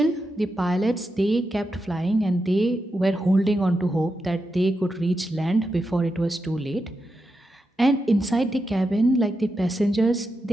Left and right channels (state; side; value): normal; both; correlation 0.87